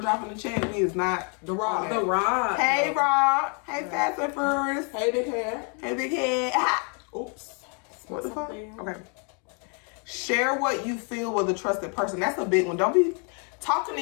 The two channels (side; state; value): right; quieter; 37.8 dB